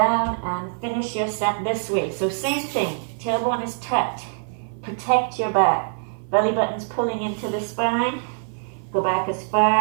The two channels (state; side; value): silent; left; 56 dB below the other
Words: and finish your set this way. So same thing. Tailbone is tucked. protect your back. Belly button's pulling into the spine. Go back as